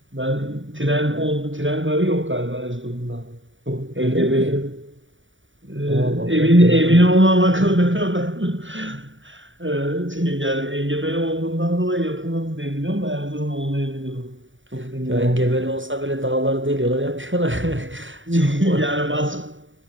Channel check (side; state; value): left; late; 0.56 ms